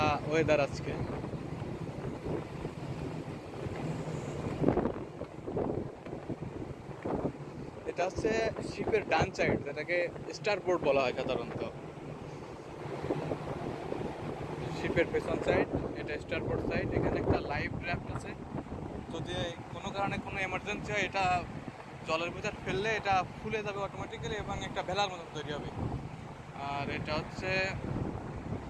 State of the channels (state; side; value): identical; both; correlation 1.00